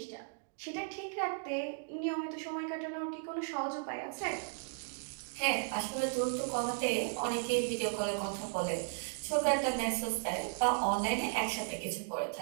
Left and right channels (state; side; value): silent; left; digital silence